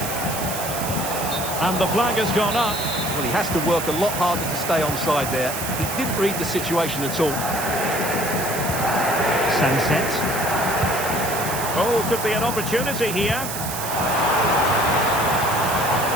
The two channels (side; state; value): right; noise; hiss, 6 dB below the sound